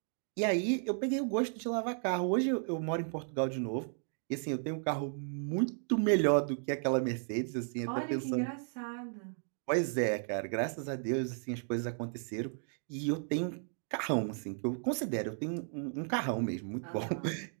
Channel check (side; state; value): left; silent; 55 dB below the other